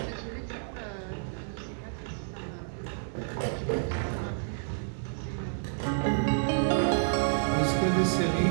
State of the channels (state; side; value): silent; left; 56 dB below the other